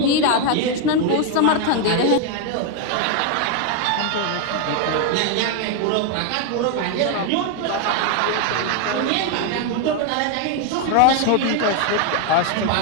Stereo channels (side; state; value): both; different; correlation 0.01